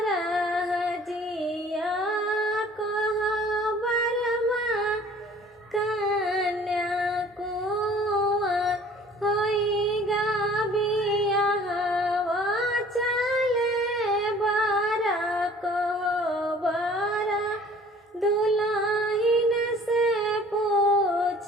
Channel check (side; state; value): both; normal; correlation 0.51